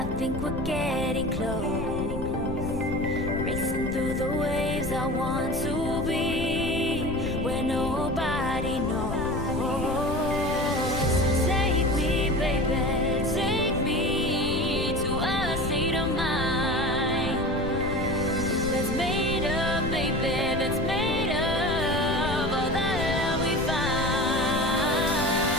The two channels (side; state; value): left; noise; rumble, 6 dB below the sound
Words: think we're getting close. Racing through the waves, I want to be where nobody knows. Take me, baby, take me to a state of mind that's made of, baby, that's made of all that we find.